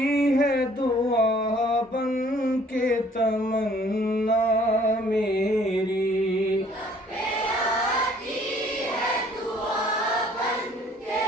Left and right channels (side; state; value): both; normal; correlation 0.58